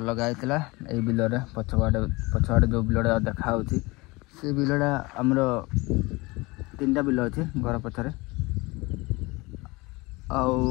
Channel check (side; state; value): right; quieter; 23.7 dB